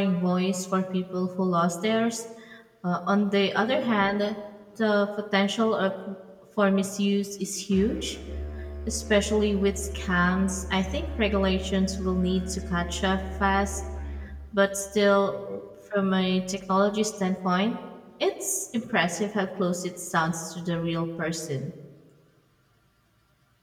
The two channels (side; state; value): both; identical; correlation 1.00